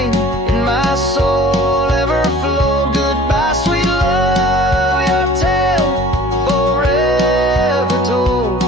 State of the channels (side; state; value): both; normal; correlation 0.48